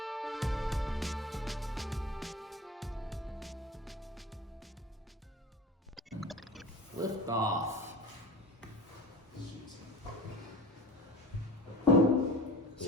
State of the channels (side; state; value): both; normal; correlation 0.37